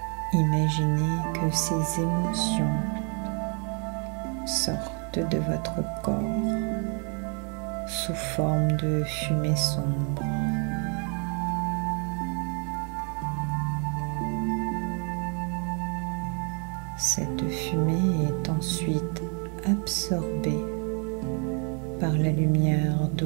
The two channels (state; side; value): quieter; left; 37.6 dB